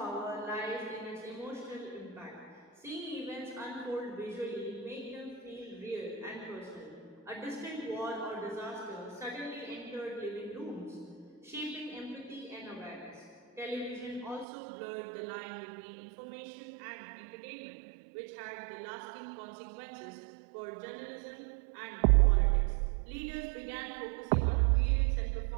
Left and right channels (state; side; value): drops out; left; at 14.5 s